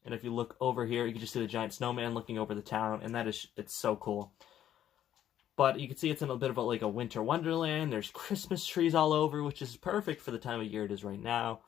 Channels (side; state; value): right; quieter; 11.0 dB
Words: and if you look over here, you can just see the giant snowman looking over the town, and it's so cool. But you can see it's in a bit of like a winter wonderland. There's Christmas trees all over, which is perfect for the time of year it is right now.